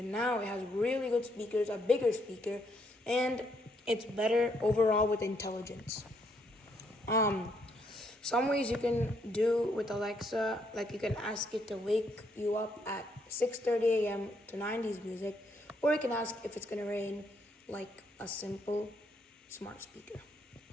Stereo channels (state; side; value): normal; both; correlation 0.73